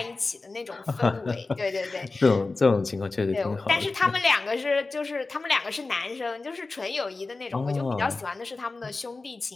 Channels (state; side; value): quieter; right; 3.6 dB